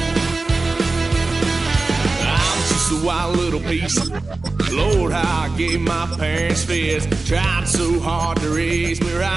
Wild little piece. Lord, how I gave my parents fits. Tried so hard to raise me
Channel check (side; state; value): left; quieter; 3.4 dB